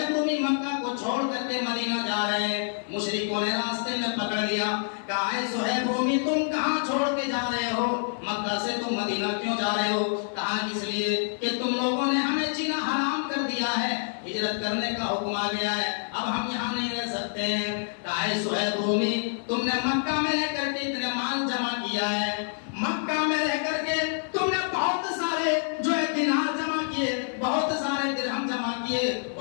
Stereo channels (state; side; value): silent; right; digital silence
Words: रूमी मक्का को छोड़ करके मदीना जा रहे हैं, मुशरिकों ने रास्ते में पकड़ लिया, कहा है सुहैब रूमी तुम कहां छोड़ के जा रहे हो, मक्का से तुम मदीना क्यों जा रहे हो? कहा इसलिए कि तुम लोगों ने हमें जीना हराम कर दिया है, हिजरत करने का हुक्म आ गया है, अब हम यहाँ नहीं रह सकते हैं। कहा है सुहैब रूमी तुमने मक्का में रह करके इतने माल जमा किया है, मक्का में रह करके तुमने बहुत सारे जो है दिनार जमा किए, बहुत सारे दिरहम जमा किए,